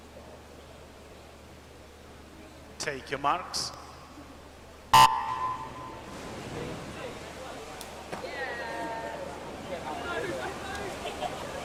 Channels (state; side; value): identical; both; correlation 1.00